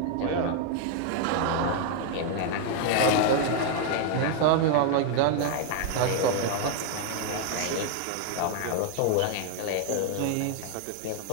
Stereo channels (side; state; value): both; different; correlation 0.00